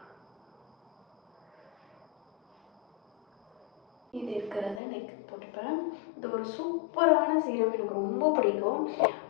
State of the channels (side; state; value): right; drops out; at 4.8 s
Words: இது இருக்கிறத நெக் போட்டுப்பேன். இது ஒரு சூப்பரான சீரம், எனக்கு ரொம்ப பிடிக்கும்.